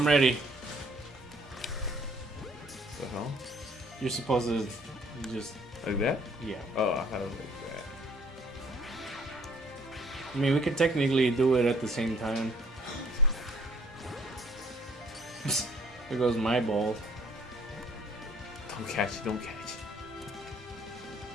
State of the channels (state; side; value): normal; both; correlation 0.60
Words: ready. The hell? You're supposed to just Like that? yeah. Oh, I thought it was like that. I mean, we could technically do it at the same time. There goes my ball. Don't catch it. Don't catch it.